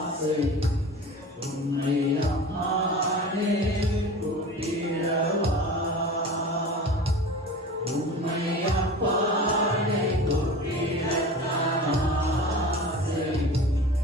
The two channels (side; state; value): both; normal; correlation 0.36